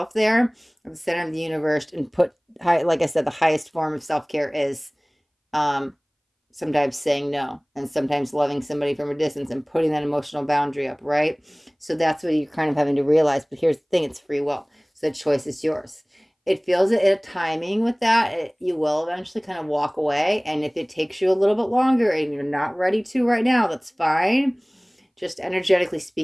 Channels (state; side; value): identical; both; correlation 1.00